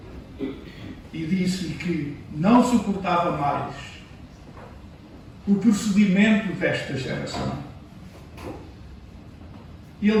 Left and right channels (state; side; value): identical; both; correlation 1.00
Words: e disse-lhe que não suportava mais o procedimento desta geração. Ele